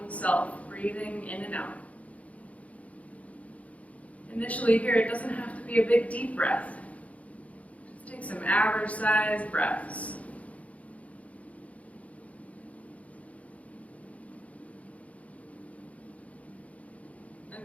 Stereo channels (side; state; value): right; late; 0.067 ms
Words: self breathing in and out. Initially here, it doesn't have to be a big deep breath. Just take some average sized breaths. I